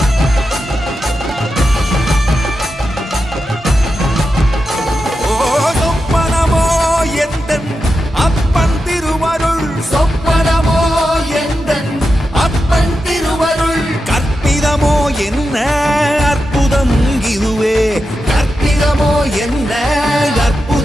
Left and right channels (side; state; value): both; normal; correlation 0.89